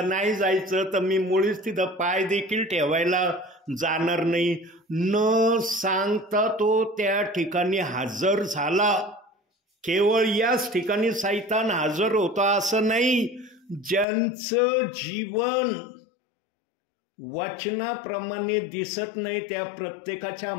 नाही जायचं तर मी मुळीच तिथं पाय देखील ठेवायला जाणार नाही. न सांगता तो त्या ठिकाणी हजर झाला. केवळ याच ठिकाणी सैतान हजर होता असं नाही. ज्यांचं जीवन वचनाप्रमाणे दिसत नाही त्या प्रत्येकाच्या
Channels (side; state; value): right; drops out; at 14.1 s